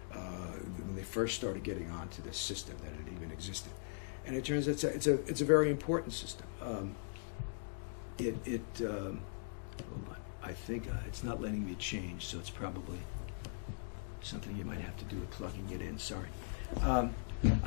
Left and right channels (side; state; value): right; silent; digital silence